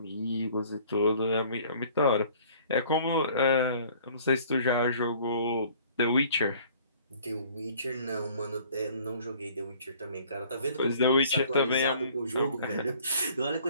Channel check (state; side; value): inverted; both; correlation -0.54